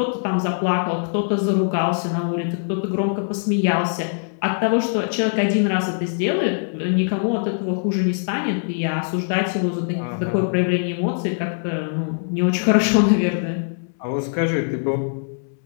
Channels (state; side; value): silent; right; 64 dB below the other